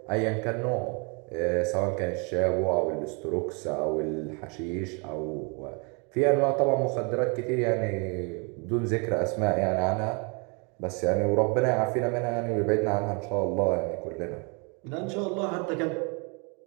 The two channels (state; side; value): quieter; left; 33.4 dB